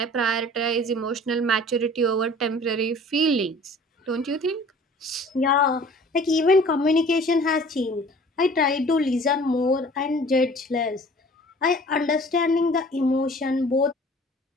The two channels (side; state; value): both; normal; correlation 0.48